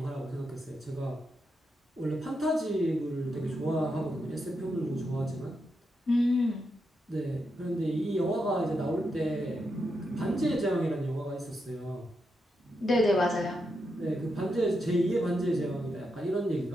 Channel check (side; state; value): both; normal; correlation 0.84